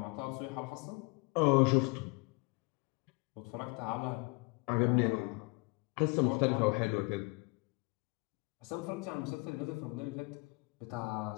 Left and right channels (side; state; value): right; quieter; 28.2 dB